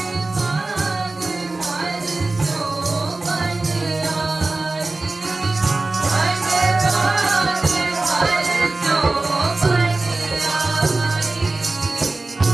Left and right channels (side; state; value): left; quieter; 3.2 dB